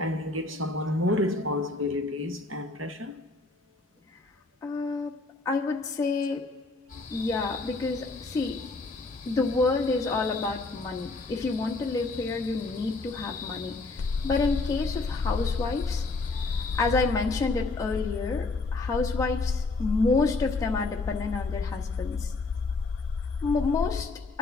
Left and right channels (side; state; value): right; quieter; 3.5 dB